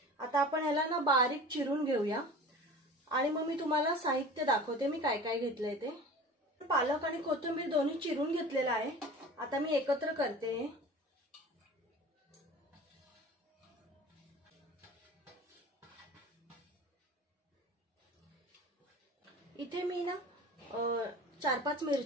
आता आपण याला ना बारीक चिरून घेऊया आणि मग मी तुम्हाला साहित्य दाखवते मी काय काय घेतलंय ते। पालक आणि कोथिंबीर दोन्ही चिरून घेतलेला आहे, आता मी एकत्र करते। इथे मी ना 4-5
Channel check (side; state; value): both; normal; correlation 0.38